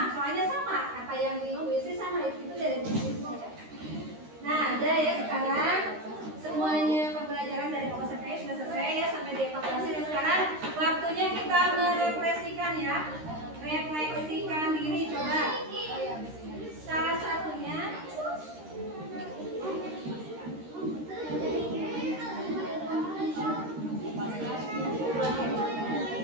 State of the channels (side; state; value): left; late; 13 ms